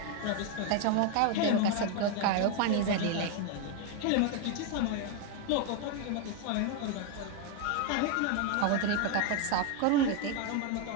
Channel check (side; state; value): both; different; correlation 0.01